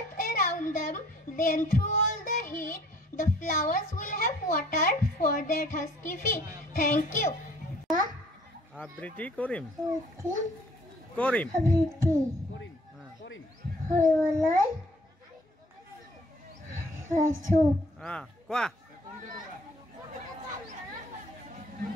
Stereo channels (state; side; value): normal; both; correlation 0.57